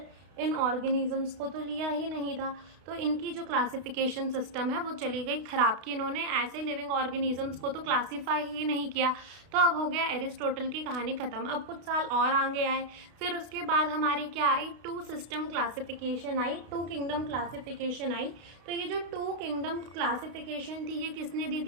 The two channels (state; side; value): late; left; 32 ms